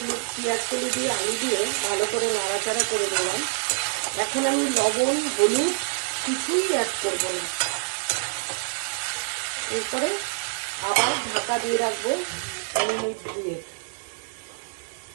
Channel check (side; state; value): left; silent; 61 dB below the other